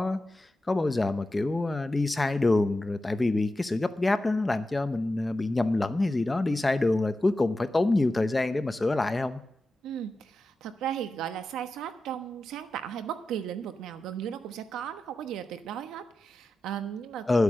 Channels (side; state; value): both; normal; correlation 0.92